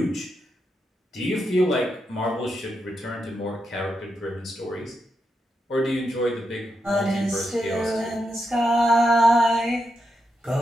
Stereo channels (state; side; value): normal; both; correlation 0.84